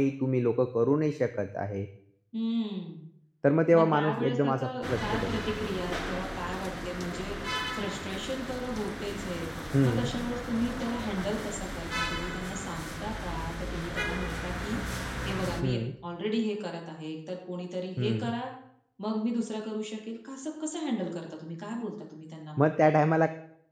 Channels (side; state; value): both; identical; correlation 1.00